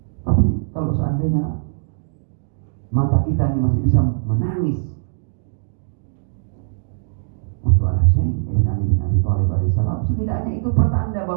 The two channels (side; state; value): left; silent; digital silence